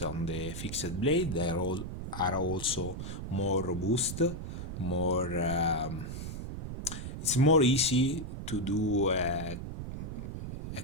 on the fixed blade. They are also more robust, more it's more easy to do a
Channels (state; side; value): noise; right; rumble, 7 dB below the sound